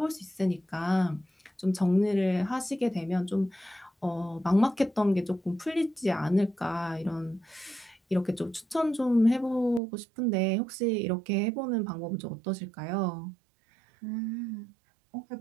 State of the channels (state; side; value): drops out; left; at 9.8 s